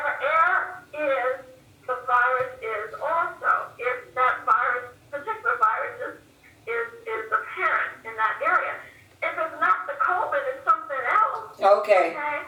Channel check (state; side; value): identical; both; correlation 1.00